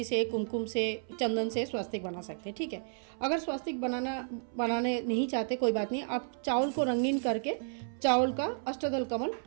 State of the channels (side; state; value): left; silent; 56 dB below the other